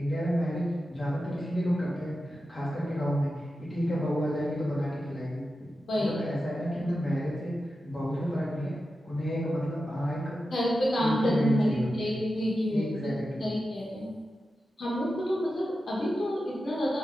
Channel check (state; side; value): normal; both; correlation 0.91